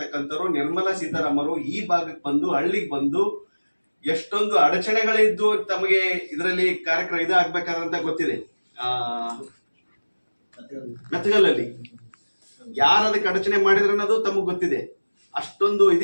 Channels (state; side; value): inverted; both; correlation -1.00